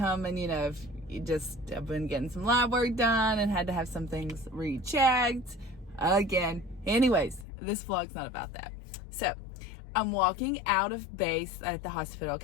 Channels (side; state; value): right; drops out; at 7.5 s